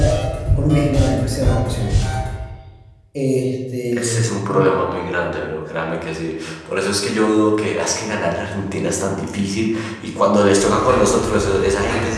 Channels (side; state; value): both; identical; correlation 1.00